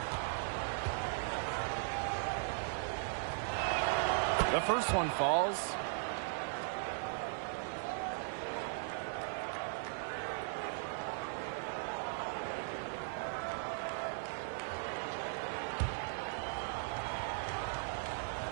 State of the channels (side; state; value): left; silent; 52 dB below the other